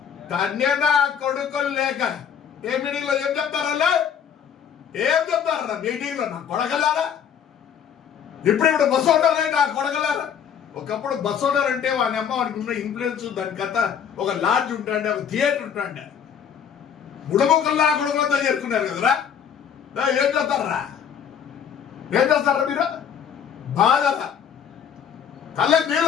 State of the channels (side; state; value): right; quieter; 8.0 dB